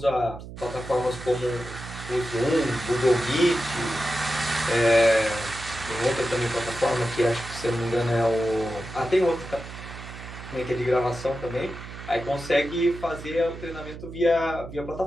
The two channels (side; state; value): right; noise; hum, 12 dB below the sound